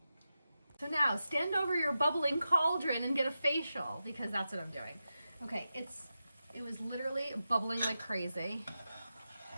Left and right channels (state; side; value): inverted; both; correlation -0.91